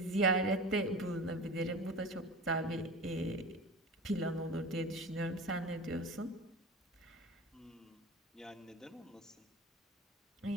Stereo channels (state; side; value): normal; both; correlation 0.33